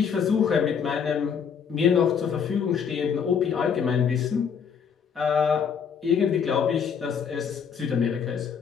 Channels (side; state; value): right; quieter; 7.0 dB